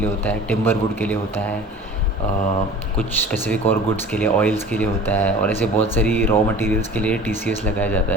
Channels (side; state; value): both; normal; correlation 0.42